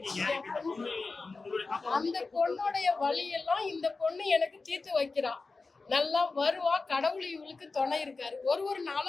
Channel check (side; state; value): right; quieter; 3.9 dB